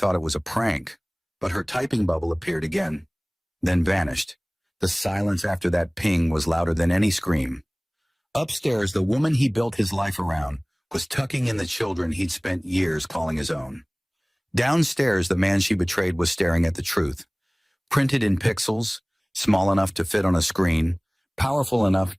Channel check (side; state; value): both; identical; correlation 1.00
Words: it was a prank, but her typing bubble appeared again, then vanished. The silence after that ping was louder than any scream. Upstairs, the woman he built his life around was tucking in the children he'd spent years calling his own. Downstairs, the man she betrayed was staring at the truth, printed in pixels, small enough to fit on a screen, powerful enough